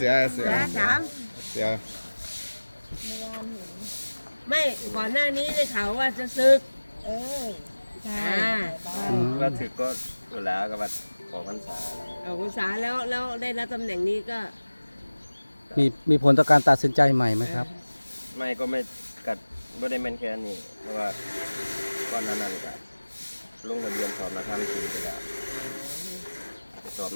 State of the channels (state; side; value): inverted; both; correlation -1.00